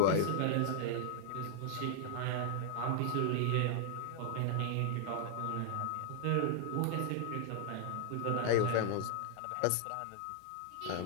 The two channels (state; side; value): different; both; correlation 0.00